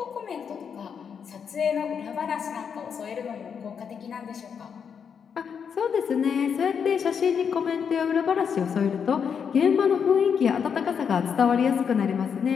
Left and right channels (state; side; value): quieter; right; 7.0 dB